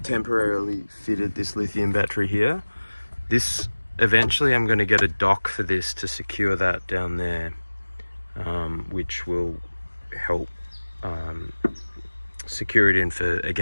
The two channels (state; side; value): inverted; both; correlation -1.00